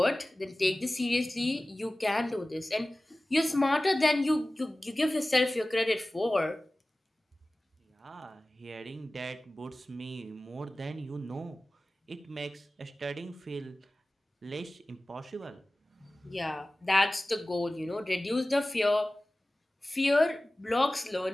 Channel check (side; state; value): both; normal; correlation 0.97